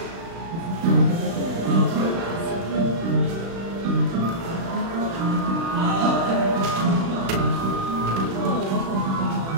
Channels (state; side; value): late; left; 36 ms